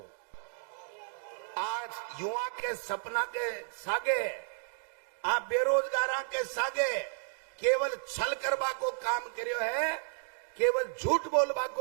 आज युवा के सपना के सागे, आप बेरोजगार के सागे केवल छल करवा को काम करियो है, केवल झूठ बोलवा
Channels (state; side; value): silent; left; digital silence